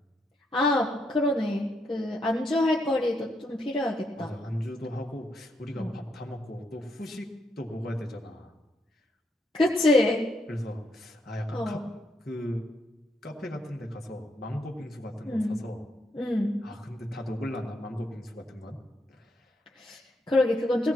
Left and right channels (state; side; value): normal; both; correlation 0.77